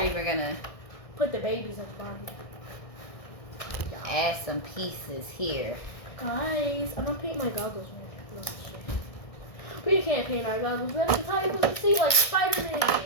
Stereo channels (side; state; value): right; late; 1.6 ms